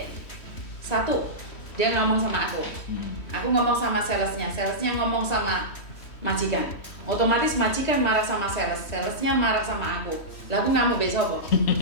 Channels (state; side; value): late; right; 3.1 ms